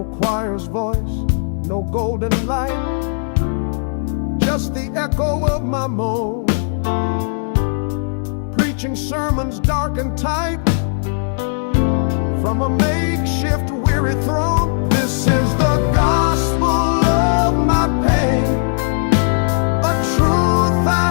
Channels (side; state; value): right; silent; 67 dB below the other